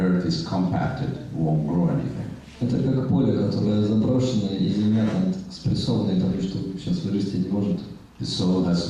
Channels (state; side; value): identical; both; correlation 1.00